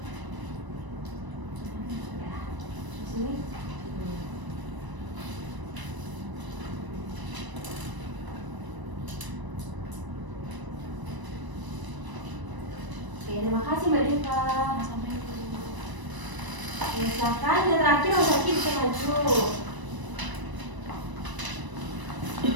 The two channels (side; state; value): left; late; 1.0 ms